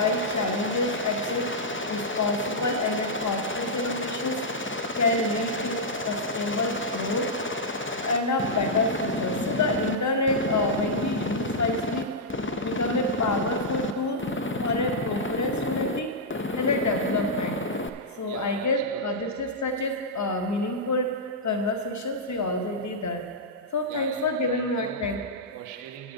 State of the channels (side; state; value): both; normal; correlation -0.08